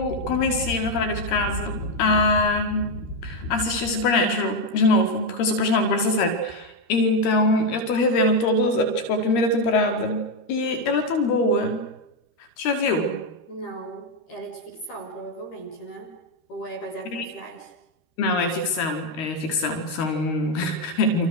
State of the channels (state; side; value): late; right; 13 ms